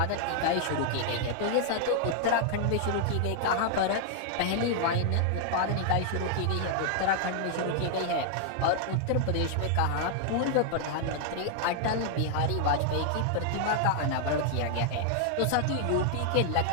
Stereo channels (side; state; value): both; different; correlation 0.00